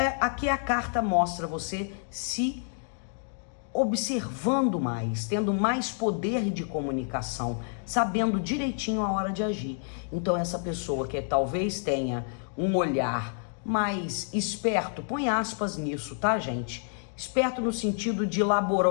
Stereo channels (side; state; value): right; silent; digital silence